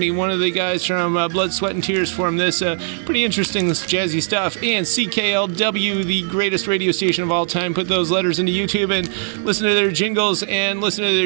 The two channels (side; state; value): left; silent; digital silence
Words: One of the guys from Blood, Sweat, and Tears formed this. Pretty interesting jazzy stuff. And CKLW, the greatest radio station of all time, put those letters into YouTube and listen to their jingles and listen to